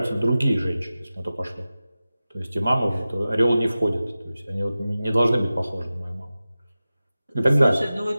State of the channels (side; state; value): both; inverted; correlation -0.95